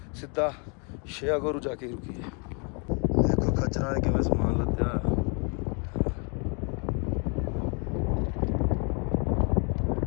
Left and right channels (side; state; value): right; quieter; 36.3 dB